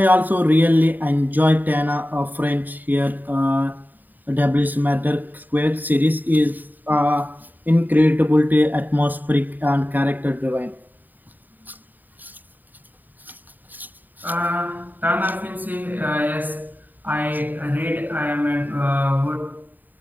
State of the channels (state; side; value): late; left; 0.087 ms